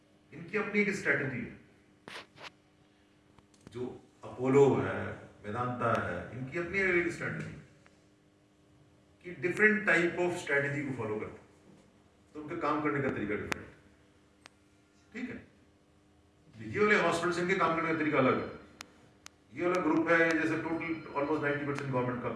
इनकी अपनी एक स्ट्रैटेजी है। जो अपोलो है, वेदांता है, इनकी अपनी एक स्ट्रैटेजी कि डिफरेंट टाइप ऑफ स्ट्रैटेजी को फॉलो करते हैं, तो उनके काम करने का तरीका डिफरेंट है, ठीक है। ये वाले हॉस्पिटल इनके काम करने का तरीका अलग है। ये वाला ग्रुप है जैसे टोटल ऑलमोस्ट 90% गवर्नमेंट का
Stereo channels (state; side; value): identical; both; correlation 1.00